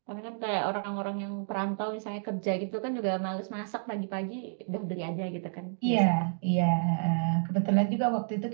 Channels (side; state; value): left; silent; digital silence